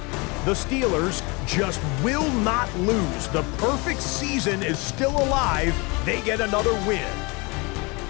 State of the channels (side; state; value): right; quieter; 27.9 dB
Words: The Steelers just will not lose. The perfect season is still alive. They get another win.